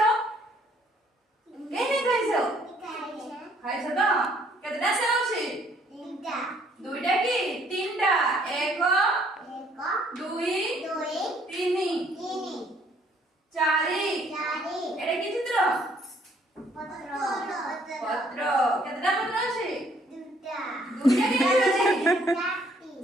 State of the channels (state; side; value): normal; both; correlation 0.64